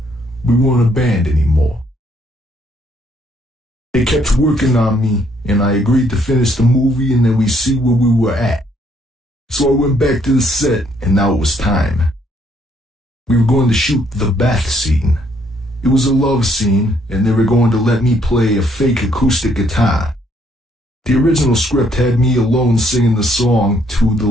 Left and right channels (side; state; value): both; normal; correlation 0.68